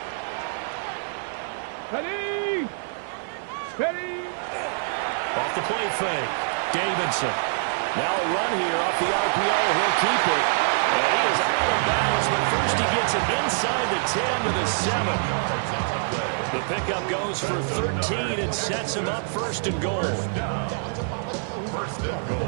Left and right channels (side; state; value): left; silent; 57 dB below the other